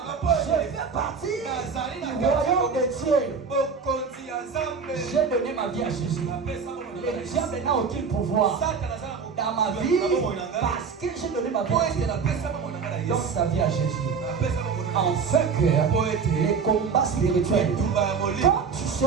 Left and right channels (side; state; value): left; quieter; 5.7 dB